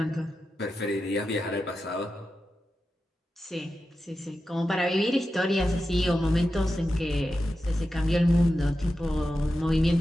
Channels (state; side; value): normal; both; correlation 0.91